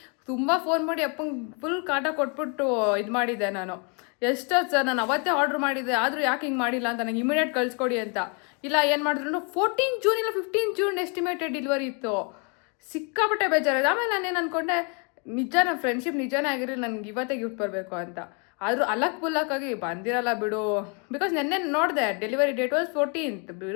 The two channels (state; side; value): quieter; right; 35.8 dB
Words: ತುಂಬ ಫೋನ್ ಮಾಡಿ ಅಪ್ಪಂಗೆ ಫುಲ್ ಕಾಟ ಕೊಟ್ಬಿಟ್ಟು ಇದು ಮಾಡಿದ್ದೆ ನಾನು. ಎಷ್ಟೊತ್ತು ಸರ್ ನಾನು ಅವತ್ತೇ ಆರ್ಡ್ರ್ ಮಾಡಿದ್ದೆ, ಆದರೂ ಯಾಕೆ ಹಿಂಗೆ ಮಾಡಿಲ್ಲ ಅಂತ ನನಗೆ ಇಮಿಡಿಯೇಟ್ ಕಳಿಸ್ಕೊಡಿ ಅಂತ. ಇಲ್ಲ ಏನು ಮಾಡಿದ್ರು 14 ಜೂನ್ ಇಲ್ಲ 15 ಜೂನ್ ಎಸ್ಟಿಮೇಟೆಡ್ ಡೆಲಿವರಿ ಇತ್ತು. ಸಿಕ್ಕಾಪಟ್ಟೆ ಬೇಜಾರಿದೆ. ಆಮೇಲೆ ನಾನೇನು ಅಂದ್ಕೊಂಡೆ, ನಿಜ ನಮ್ಮ ಫ್ರೆಂಡ್ಶಿಪ್ ನಿಜನೇ ಆಗಿರಲಿ, ನನಗೆ ಇವತ್ತೇ ಗಿಫ್ಟ್ ಬರಬೇಕು ಅಂತ. ಆದರೂ ಅಲಕ್ ಬಂದಿರಲ್ಲ ಬಿಡು. ಬಿಕಾಸ್ ನೆನ್ನೆ ನೋಡಿದೆ ಡೆಲಿವರಿ ಡೇಟ್ ವಾಸ್ 14th.